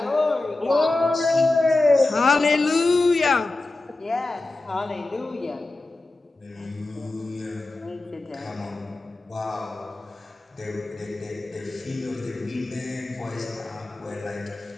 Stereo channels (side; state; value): right; quieter; 3.0 dB